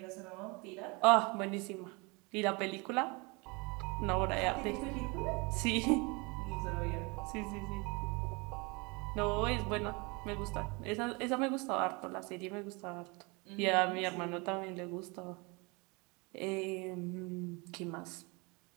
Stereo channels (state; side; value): quieter; left; 28.1 dB